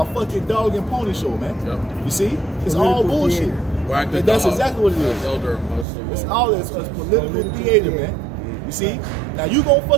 fucking dog and pony show, man. Yep. You see? It's all bullshit. That's exactly what it is. It's all it's political theater, man. You see? Now you gonna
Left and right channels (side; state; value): left; drops out; at 5.9 s